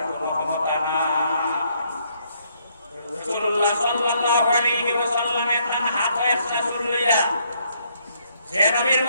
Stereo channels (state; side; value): inverted; both; correlation -0.71